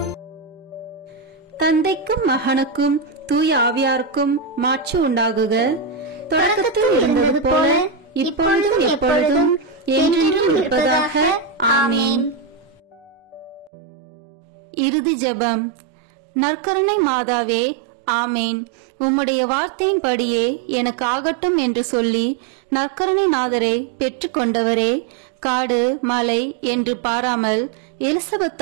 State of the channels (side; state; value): left; drops out; at 13.7 s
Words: தந்தைக்கும் மகனுக்கும் தூய ஆவியாருக்கும் மாட்சி உண்டாகுக. தொடக்கத்தில் இருந்தது போல இப்பொழுதும் எப்பொழுதும் என்றென்றும் இருப்பதாக. ஆமேன். இறுதி ஜெபம். நற்கருணை மாதாவே, ஆமேன். உம்முடைய வார்த்தையின்படியே எனக்கு ஆகட்டும் என்று சொல்லி நற்கருணை நாதரை பெற்று கொண்டவரே, காடு மலை என்று பாராமல்